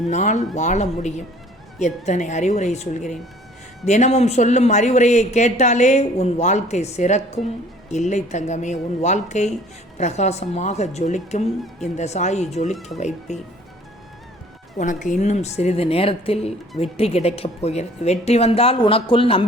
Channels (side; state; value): both; normal; correlation 0.54